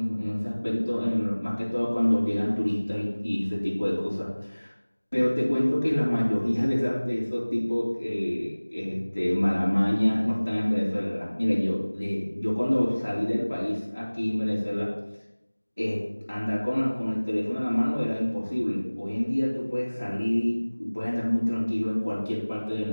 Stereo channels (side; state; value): both; inverted; correlation -1.00